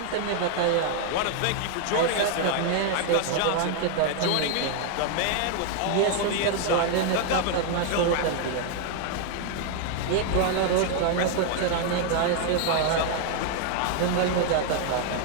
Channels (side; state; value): both; different; correlation 0.00